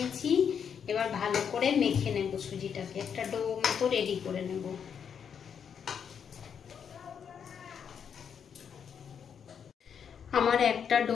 এবার ভালো করে মেখে নেব সুজিটাকে, একটা ডো মতো রেডি করে নেব। আমার একটা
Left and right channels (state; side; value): quieter; right; 7.5 dB